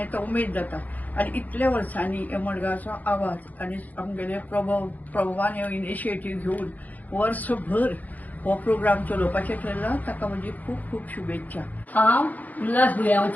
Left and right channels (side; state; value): right; late; 0.080 ms